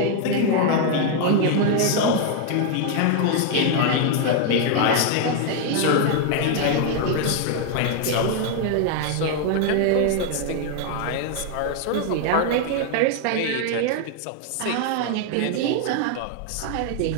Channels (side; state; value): both; different; correlation 0.00